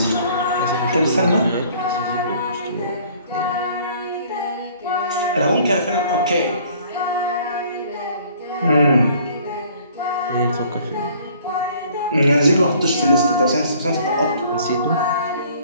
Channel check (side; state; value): both; inverted; correlation -0.56